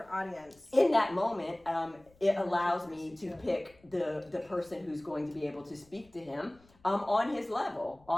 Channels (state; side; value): noise; left; rumble, 29 dB below the sound